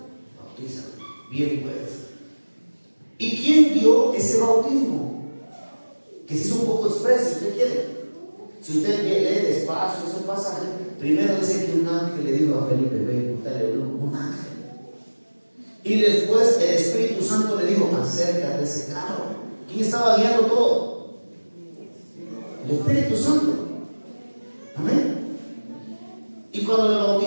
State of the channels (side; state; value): both; inverted; correlation -1.00